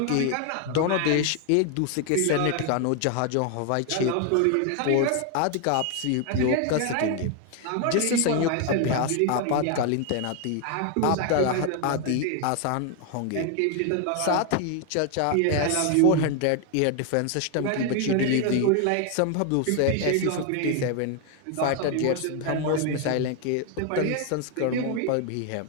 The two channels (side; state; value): both; different; correlation 0.01